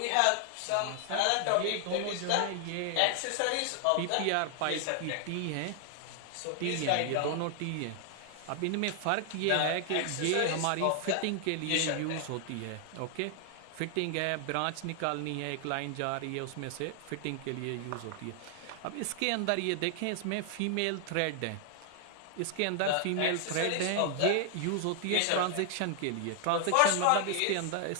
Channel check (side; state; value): both; different; correlation 0.00